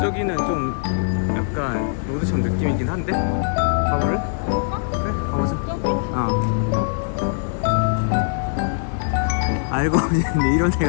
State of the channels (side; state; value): right; silent; digital silence